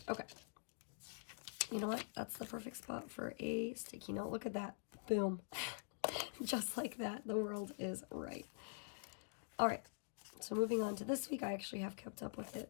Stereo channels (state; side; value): silent; right; digital silence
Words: Okay. You know what? That's the perfect spot for a sticky note. Look at that. Boom. Just like that. The world is right. All right. So moving on to this week, I actually have kept up with it